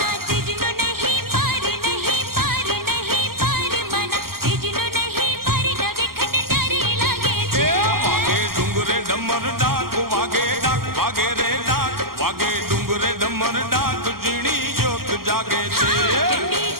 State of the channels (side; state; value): left; late; 0.93 ms